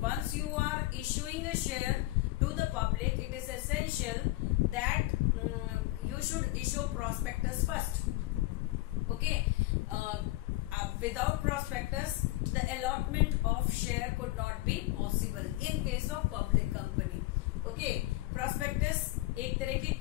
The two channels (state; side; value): quieter; right; 18.5 dB